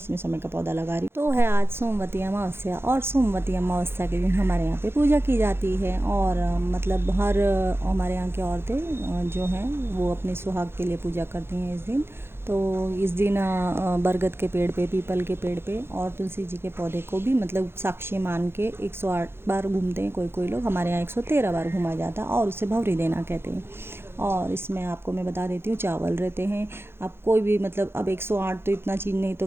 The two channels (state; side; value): late; left; 0.11 ms